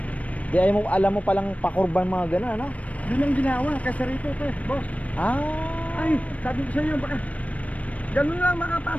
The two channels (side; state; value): right; late; 0.067 ms